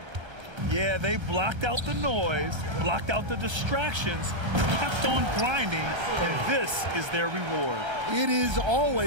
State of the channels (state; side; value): late; left; 1.3 ms